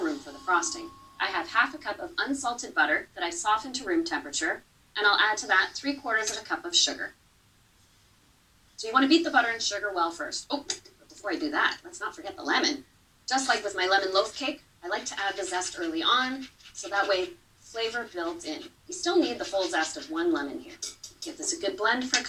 room for the frosting. I have half a cup of unsalted butter that I softened to room temperature, and I'll add to that 3/4 of a cup of sugar. So you want to beat the butter and sugar well first. Oh, but before I do that, let's not forget the lemon. Just like with my lemon loaf cake, I like to add the zest early on, so that way flavor builds in. You still need the full zest of 1 lemon here. Give this a good blend for a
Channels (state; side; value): identical; both; correlation 1.00